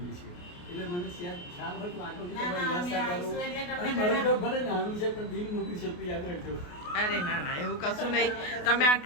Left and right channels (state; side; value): late; right; 28 ms